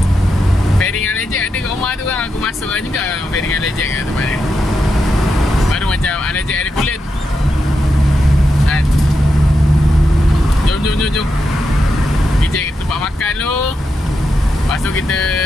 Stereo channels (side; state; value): both; normal; correlation 0.86